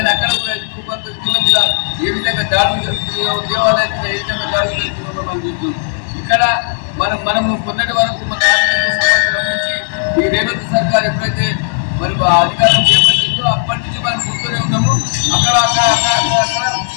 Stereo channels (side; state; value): right; silent; digital silence